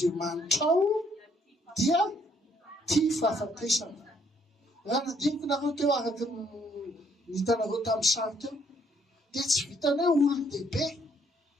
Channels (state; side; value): normal; both; correlation 0.67